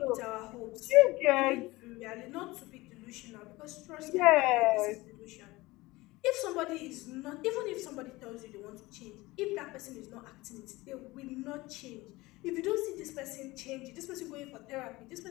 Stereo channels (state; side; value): quieter; right; 20.6 dB